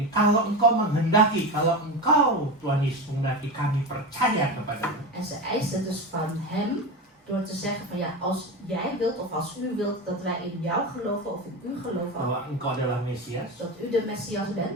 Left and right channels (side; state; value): both; normal; correlation 0.22